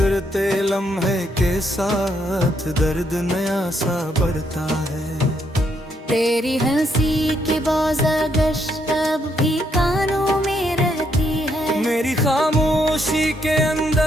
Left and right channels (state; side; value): normal; both; correlation 0.75